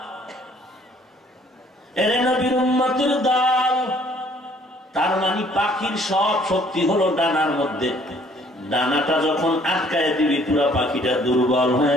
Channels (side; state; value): both; normal; correlation 0.60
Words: এরে নবীর উম্মতের দল, তার মানে পাখির সব শক্তি হলো ডানার মধ্যে। ডানাটা যখন আটকায় দিবি, পুরা পাখিটা দুর্বল